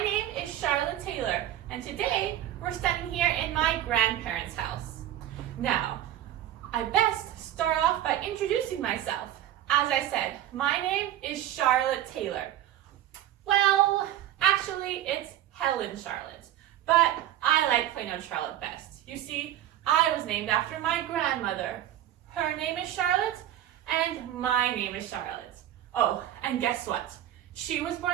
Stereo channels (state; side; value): quieter; left; 12.3 dB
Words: is Charlotte Taylor, and today we're standing here in my grandparents' house. Now, I best start off by introducing myself. As I said, my name is Charlotte Taylor. Well, actually, it's Helen Charlotte, but I like plain old Charlotte best. You see, I was named after my grandmother. Her name is Charlotte, and my name is Charlotte. Oh, and guess what? She was